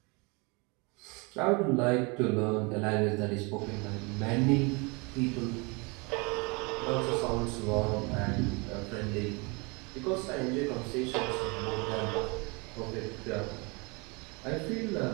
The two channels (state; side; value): quieter; left; 29.2 dB